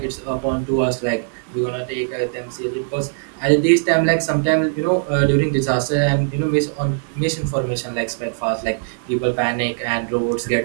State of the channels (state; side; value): silent; left; 65 dB below the other